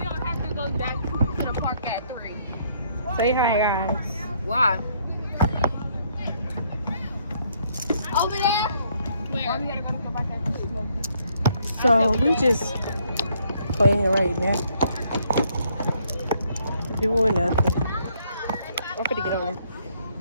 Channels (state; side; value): inverted; both; correlation -0.68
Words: have to go back to the park at 3. Say hi guys. Why? Over there? Where? We gotta go back at 3. So we just playing right now. Doing nothing. I'm gonna get on it.